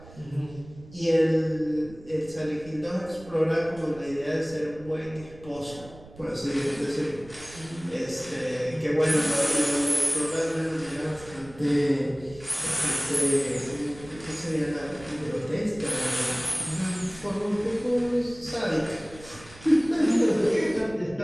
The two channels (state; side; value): noise; right; rumble, 20 dB below the sound